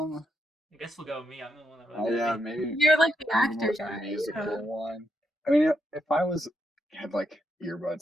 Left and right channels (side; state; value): both; normal; correlation 0.81